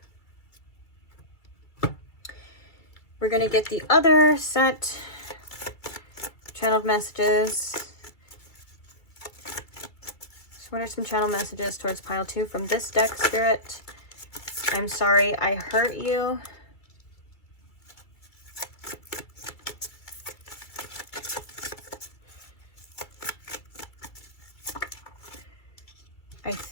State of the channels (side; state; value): right; late; 2.1 ms